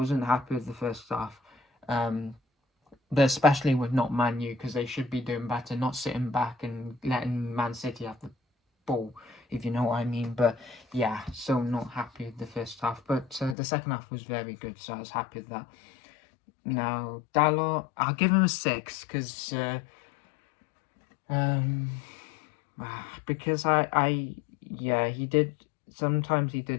happy with the first half. But especially with not Man U, because they should be doing better, not sitting back and letting Man City have the ball, if you know what I mean. But yeah, so not happy with the first half. But the second half was very good, so I was happy with that. Now, Dalot, I'll give him a 6 because he did. Sometimes he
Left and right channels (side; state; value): right; drops out; at 13.6 s